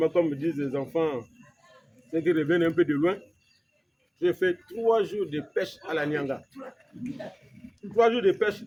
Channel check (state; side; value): identical; both; correlation 1.00